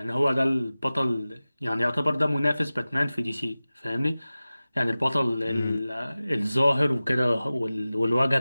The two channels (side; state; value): both; inverted; correlation -0.97